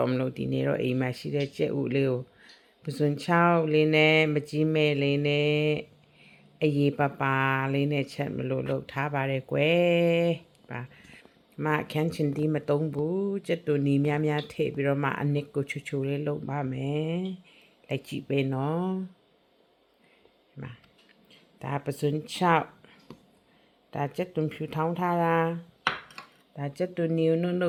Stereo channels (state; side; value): identical; both; correlation 1.00